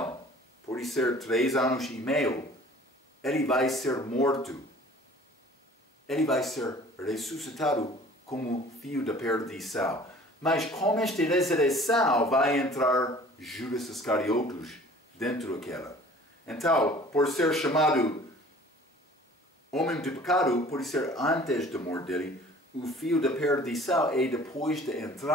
por ser 3 anos e meio, ele vai ser morto. Ele vai ser ressuscitado como filho da perdição. Mas com esta ressurreição vai entrar Judas Iscariotes dentro daquela. Então, por ser chamado homem de pecado, por ser antes da morte dele, o filho da perdição é depois da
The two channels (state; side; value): normal; both; correlation 0.49